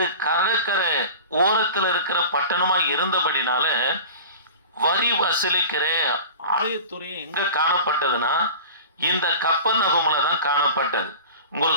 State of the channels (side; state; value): both; inverted; correlation -0.36